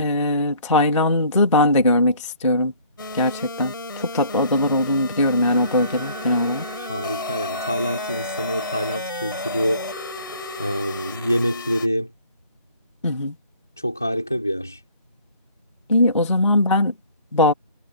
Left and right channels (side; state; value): both; inverted; correlation -0.54